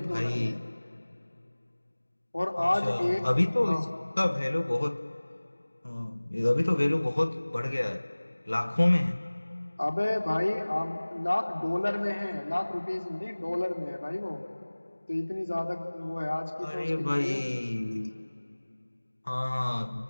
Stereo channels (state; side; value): inverted; both; correlation -1.00